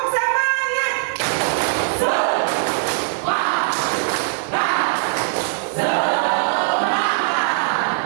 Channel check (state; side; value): silent; left; 62 dB below the other